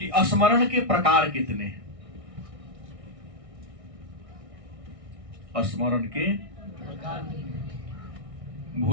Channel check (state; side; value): late; left; 1.6 ms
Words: स्मरण के प्रकार कितने हैं? स्मरण के